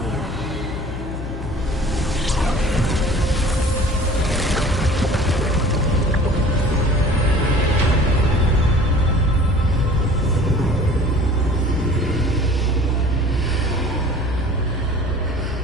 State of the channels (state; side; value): noise; left; hum, 8 dB below the sound